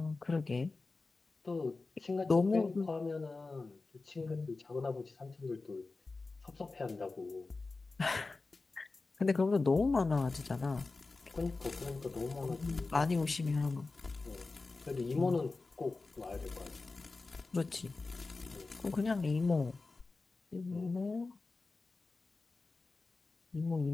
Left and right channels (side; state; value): right; quieter; 3.7 dB